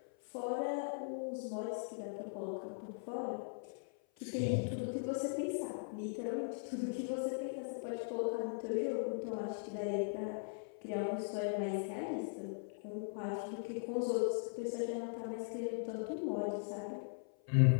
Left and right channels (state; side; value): silent; right; 51 dB below the other